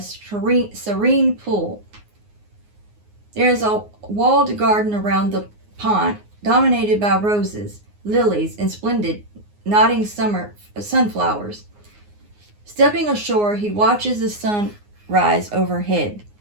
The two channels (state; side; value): late; left; 9.6 ms